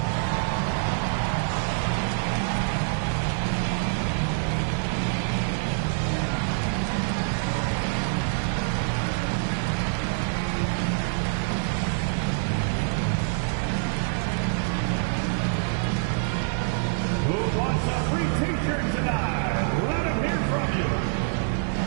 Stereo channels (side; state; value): left; silent; digital silence